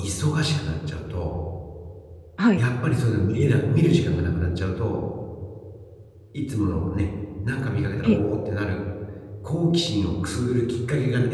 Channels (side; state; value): both; identical; correlation 1.00